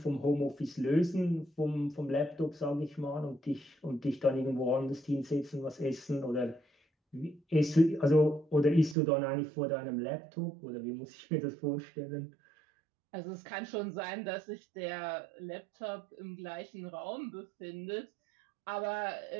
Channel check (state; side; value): drops out; left; at 9.0 s